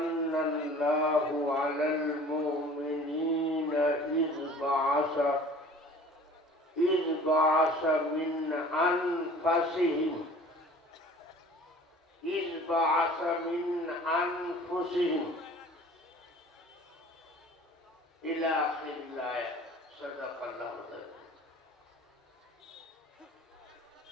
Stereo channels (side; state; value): both; normal; correlation 0.46